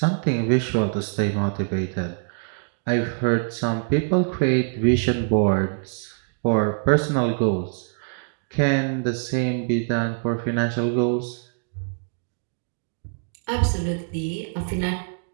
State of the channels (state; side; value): silent; left; digital silence